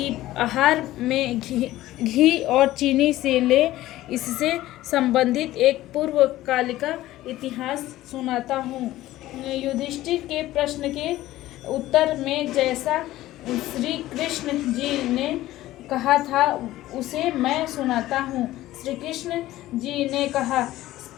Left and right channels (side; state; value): right; quieter; 15.6 dB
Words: आहार में घी और चीनी से ले। इससे संबंधित एक पूर्वकालिक इतिहास सुनाता हूँ। युधिष्ठिर के प्रश्न के उत्तर में जैसा श्री कृष्ण जी ने कहा था उसे मैं सुनाता हूँ। श्री कृष्ण जी ने कहा